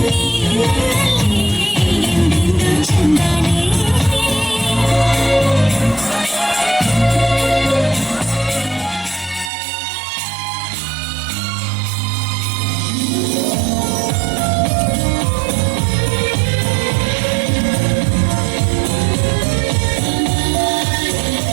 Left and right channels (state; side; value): drops out; left; at 9.5 s